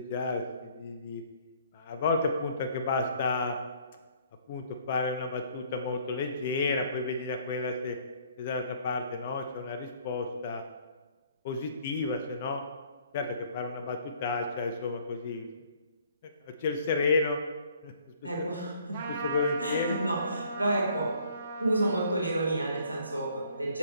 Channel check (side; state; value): both; inverted; correlation -0.60